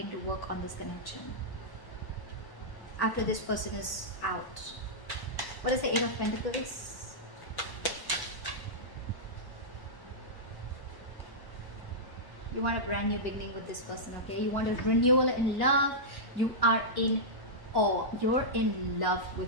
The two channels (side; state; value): right; late; 1.0 ms